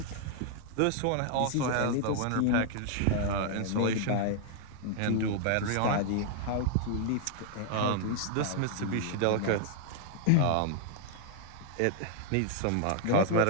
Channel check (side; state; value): both; different; correlation -0.01